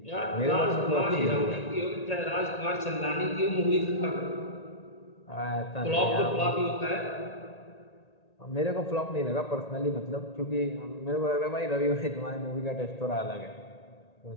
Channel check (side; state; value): right; late; 1.8 ms